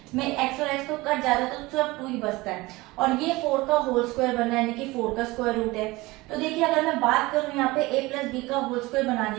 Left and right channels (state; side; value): quieter; left; 21.3 dB